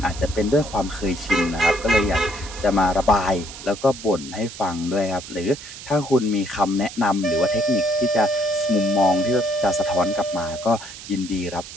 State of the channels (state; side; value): noise; right; hiss, 13 dB below the sound